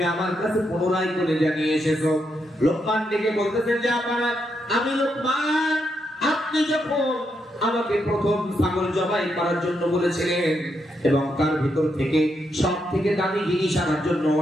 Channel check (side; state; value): both; normal; correlation 0.81